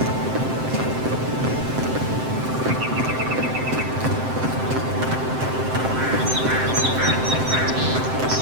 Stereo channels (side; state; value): left; late; 7.7 ms